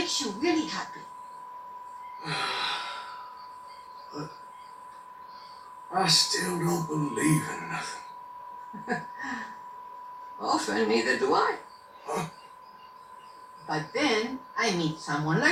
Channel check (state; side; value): identical; both; correlation 1.00